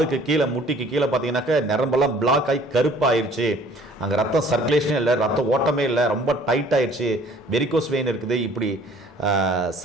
கீழே, முட்டிக்கு கீழே பார்த்தீங்கன்னாக்க நரம்பெல்லாம் பிளாக் ஆகி கருப்பாயிருச்சு. அங்கே ரத்தம் சர்க்குலேஷனே இல்லை, ரத்த ஓட்டமே இல்லை, ரொம்ப டைட் ஆயிடுச்சு, வெரிகோஸ் வெயின் இருக்குது. இப்படி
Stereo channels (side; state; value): both; normal; correlation 0.54